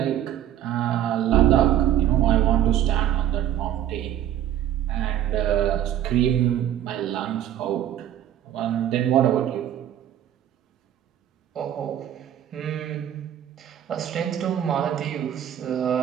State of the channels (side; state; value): left; quieter; 11.1 dB